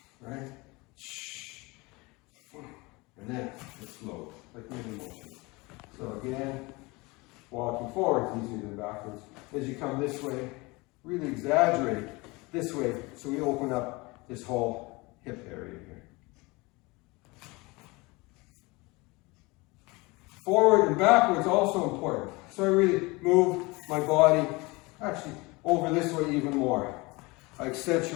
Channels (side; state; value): right; quieter; 24.5 dB